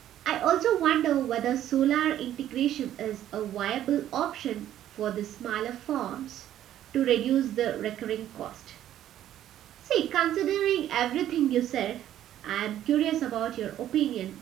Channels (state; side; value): quieter; left; 11.8 dB